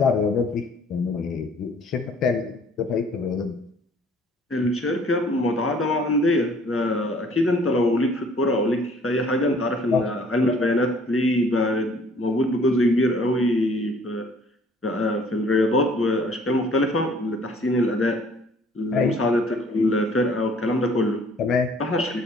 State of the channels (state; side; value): normal; both; correlation 0.56